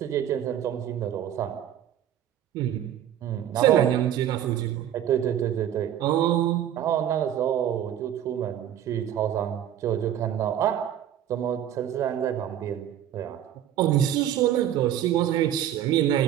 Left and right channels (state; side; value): quieter; left; 10.8 dB